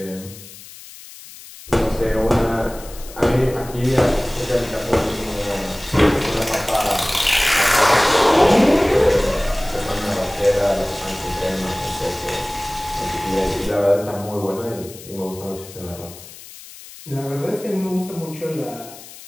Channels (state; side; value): noise; left; hiss, 17 dB below the sound